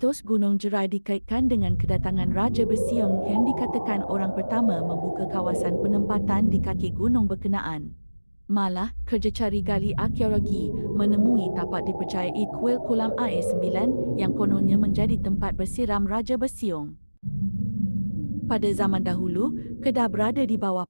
Gunung Jerai dikaitkan dengan kedatangan Raja Bersiung yang dikatakan orang pertama membuka kawasan penempatan di kaki gunung berkenaan. Malah, kerja cari gali arkeologi menemui tapak dipercayai kuil kolam air 9 yang kononnya menjadi tempat bersiram Raja Bersiung. Pada zaman dahulu, Kedah berada di bawah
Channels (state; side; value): inverted; both; correlation -1.00